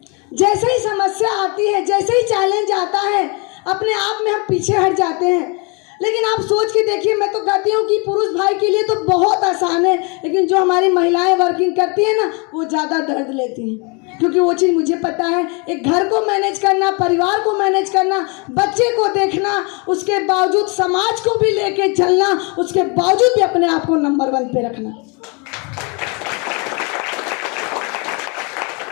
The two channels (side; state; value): right; quieter; 31.9 dB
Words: जैसे ही समस्या आती है, जैसे ही चैलेंज आता है, अपने आप में हम पीछे हट जाते हैं। लेकिन आप सोच के देखिए, मैं तो कहती हूँ कि पुरुष भाई के लिए तो बहुत आसान है, लेकिन जो हमारी महिलाएं वर्किंग करती हैं ना, वो ज़्यादा दर्द लेती हैं। क्योंकि वो चीज़ मुझे पता है, एक घर को मैनेज करना, परिवार को मैनेज करना, बच्चे को देखना, उसके बावजूद समाज को भी लेके चलना, उसके बावजूद भी अपने आप को नंबर 1 पे रखना।